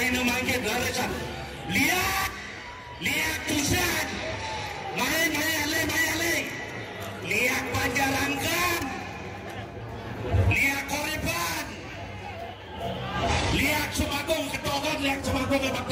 mangke laresan lihat tusan mayale lihat panjarangkan lihat koriban lihat semagung ketokan lihat semagung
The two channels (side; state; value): both; identical; correlation 1.00